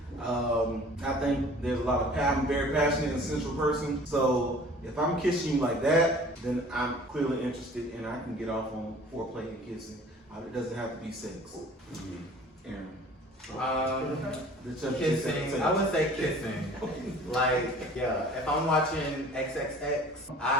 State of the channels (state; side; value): normal; both; correlation 0.48